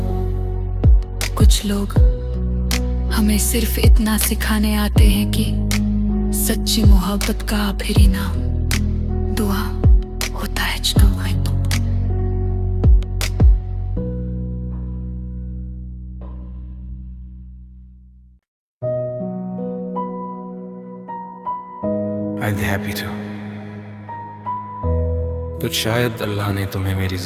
कुछ लोग हमें सिर्फ इतना सिखाने आते हैं कि सच्ची मोहब्बत का आखिरी नाम दुआ होता है। I'd be happy to। तो शायद अल्लाह ने तुम्हें मेरी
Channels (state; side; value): identical; both; correlation 1.00